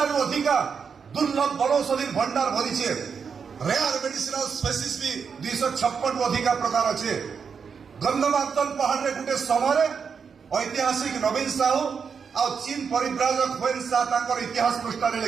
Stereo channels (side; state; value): left; quieter; 6.2 dB